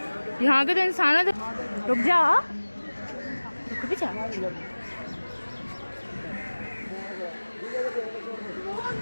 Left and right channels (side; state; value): both; inverted; correlation -1.00